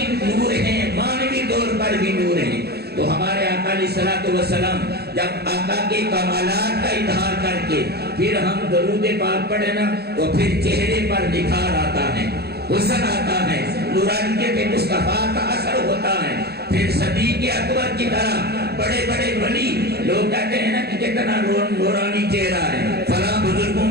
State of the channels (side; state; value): left; late; 0.47 ms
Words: نور ہیں، مانوی طور پر بھی نور ہیں. تو ہمارے آقا علیہ الصلوۃ والسلام جب آقا کے کمالات کا اظہار کر کے پھر ہم درود پاک پڑھیں نا، تو پھر چہرے پر نکھار آتا ہے، حسن آتا ہے، نورانیت مصطفیٰ کا اثر ہوتا ہے. پھر صدیق اکبر کی طرح بڑے بڑے ولی لوگ کہتے ہیں نا کہ کتنا نورانی چہرہ ہے، فلاں بزرگوں